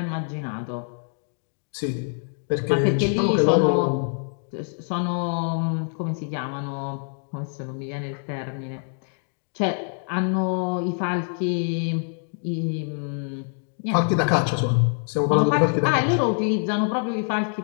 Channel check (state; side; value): silent; right; 56 dB below the other